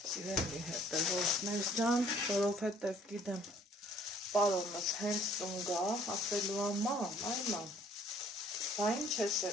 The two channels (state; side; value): normal; both; correlation 0.59